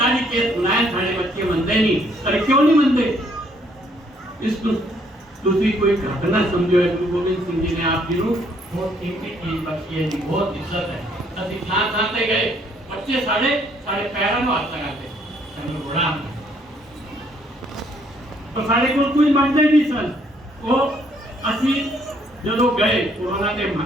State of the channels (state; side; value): normal; both; correlation 0.67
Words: केस सुनाया, सारे बच्चे मनते नहीं। अरे क्यों नहीं मनते? इसको दूसरी कोई घटना समझो है। गुरु गोविंद सिंह जी ने आप जी बहुत कीमती चीज बख्शी है जी, बहुत इज्जत है। असि थां ते गए, बच्चे साढ़े पैरों में हाथ लगाते, चलो बड़ा तो साढ़े को कोई मानते नहीं सन। वो असी जो गए कोरोना के